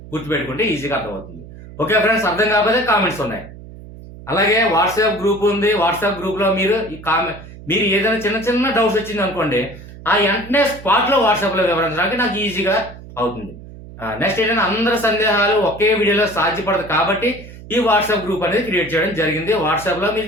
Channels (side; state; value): right; noise; hum, 16 dB below the sound